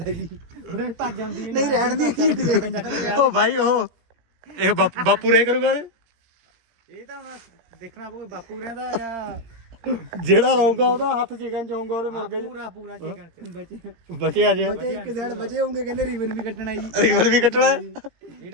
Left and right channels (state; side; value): late; left; 18 ms